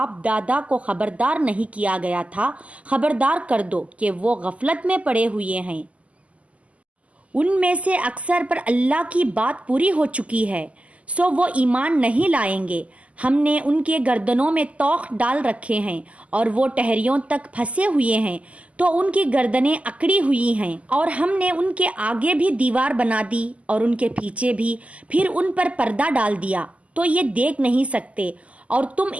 دادا کو خبردار نہیں کیا گیا تھا خبردار کر دو کہ وہ غفلت میں پڑے ہوئے ہیں۔ ان میں سے اکثر پر اللہ کی بات پوری ہو چکی ہے، سو وہ ایمان نہیں لائیں گے۔ ہم نے ان کے گردنوں میں توق ڈال رکھے ہیں اور وہ ٹہریوں تک پھنسے ہوئے ہیں تو ان کی گردنیں اکڑی ہوئی ہیں، اور ہم نے ان کے آگے بھی دیوار بنا دی اور ان کے پیچھے بھی، پھر ان پر پردہ ڈال دیا تو یہ دیکھ نہیں سکتے، اور تم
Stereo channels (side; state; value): left; late; 0.067 ms